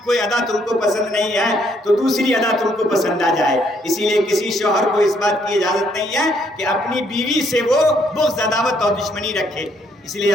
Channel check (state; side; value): normal; both; correlation 0.69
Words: کوئی ادا تم کو پسند نہیں ہے تو دوسری ادا تم کو پسند آ جائے۔ اسی لیے کسی شوہر کو اس بات کی اجازت نہیں ہے کہ اپنی بیوی سے وہ بغض، عداوت اور دشمنی رکھے۔ اس لیے